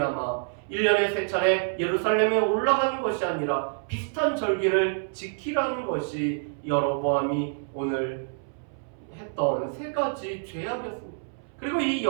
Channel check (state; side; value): silent; left; 60 dB below the other